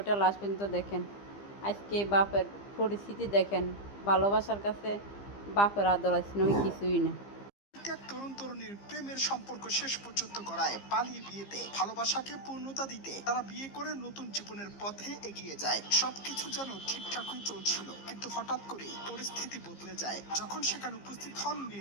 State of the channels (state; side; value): late; right; 15 ms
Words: লাস্ট পর্যন্ত দেখেন। আজকে বাপের পরিস্থিতি দেখেন। ভালোবাসার কাছে বাপের আদর আছে নয় কিছুই না। এক তরুণ তরুণীর প্রেমের সম্পর্ক শেষ পর্যন্ত গড়ায় পালিয়ে বিয়েতে। ভালোবাসাকে পূর্ণতা দিতে তারা বিয়ে করে নতুন জীবনের পথে এগিয়ে যায়। সবকিছু যেন ঠিকঠাকই চলছিল, কিন্তু হঠাৎ করে পরিস্থিতি বদলে যায় যখন সেখানে উপস্থিত হন